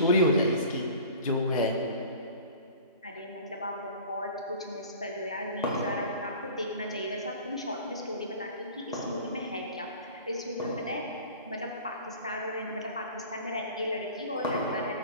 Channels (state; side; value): inverted; both; correlation -0.42